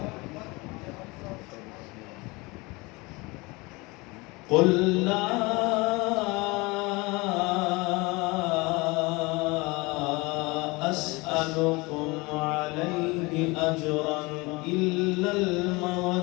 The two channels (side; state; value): right; quieter; 24.9 dB